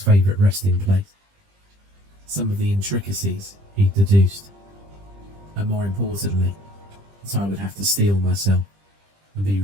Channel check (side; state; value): left; late; 20 ms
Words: favourite resting place, some of the intricacies he'd deduced, and more importantly, that I would have to steel myself and be